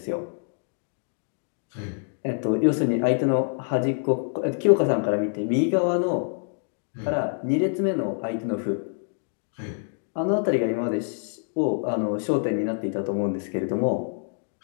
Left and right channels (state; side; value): silent; right; digital silence